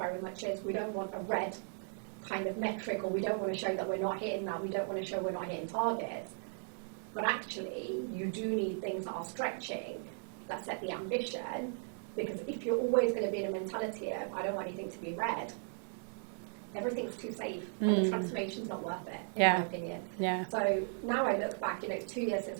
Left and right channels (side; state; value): left; silent; 53 dB below the other